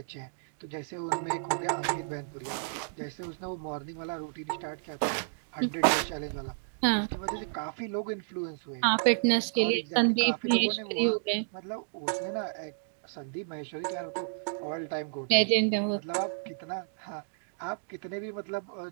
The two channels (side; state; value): left; silent; digital silence